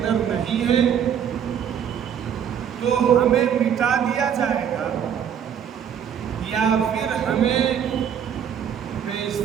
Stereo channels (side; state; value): left; quieter; 8.6 dB